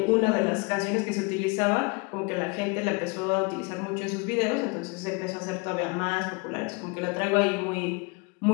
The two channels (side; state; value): right; quieter; 29.4 dB